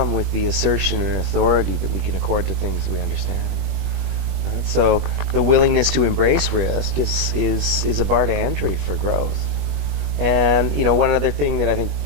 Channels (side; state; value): left; late; 21 ms